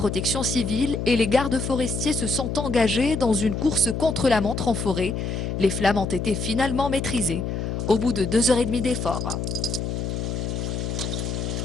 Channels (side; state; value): left; noise; hum, 3 dB below the sound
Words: civile et les gardes forestiers se sont engagés dans une course contre la montre en forêt. Les flammes ont été finalement maîtrisées au bout de 2 h 30 d'efforts.